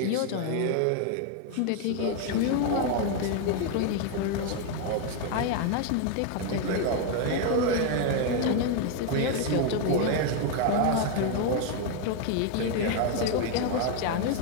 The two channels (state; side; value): different; both; correlation 0.01